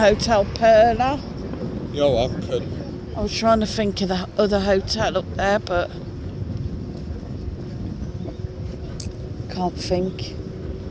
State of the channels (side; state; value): both; identical; correlation 1.00